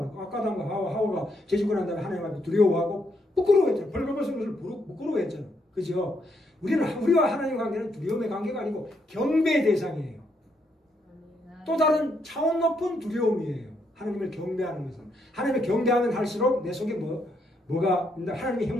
거. 아까도 한 거 하와가 죄짓고 난 다음에 하나님 앞에 두려워하고 부끄러워했잖아. 벌거벗은 것을 부끄러워했잖아. 그죠? 우리와 하나님의 관계는 두려움의 관계가 아니고 경배의 대상이에요. 또 다른 차원 높은 두려움이에요. 하나님을 경배하는 것은. 하나님을 경배하면 할수록 내 속에 뭐가 하나님의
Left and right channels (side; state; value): both; normal; correlation 0.76